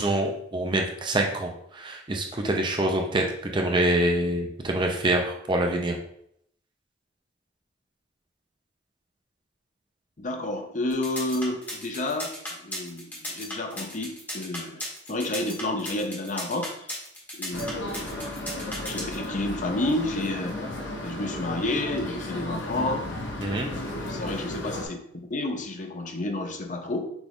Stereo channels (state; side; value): normal; both; correlation 0.40